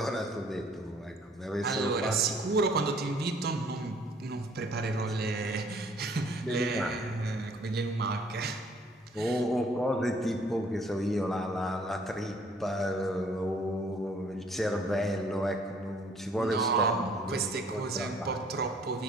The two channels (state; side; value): normal; both; correlation 0.59